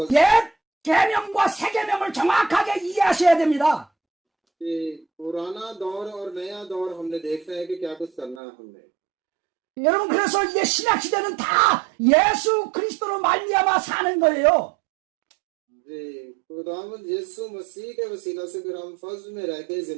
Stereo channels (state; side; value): drops out; left; at 8.4 s